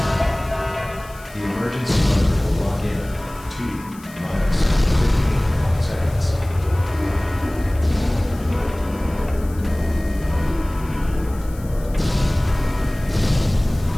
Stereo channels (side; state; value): left; noise; hiss, 22 dB below the sound